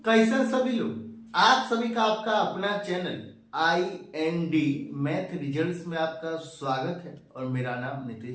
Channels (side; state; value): both; identical; correlation 1.00